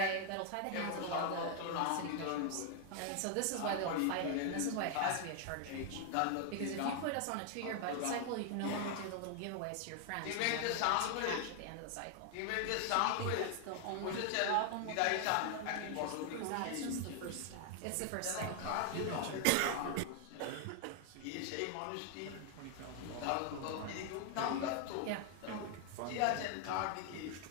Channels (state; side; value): different; both; correlation 0.00